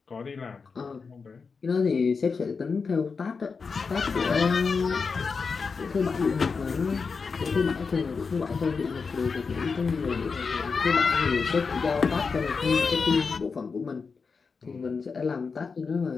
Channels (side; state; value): right; quieter; 5.0 dB